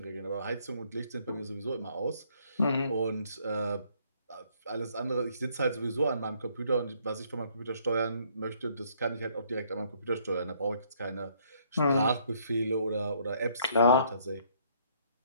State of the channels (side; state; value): both; inverted; correlation -0.66